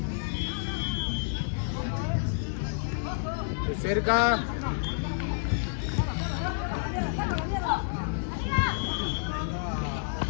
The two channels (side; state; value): right; silent; digital silence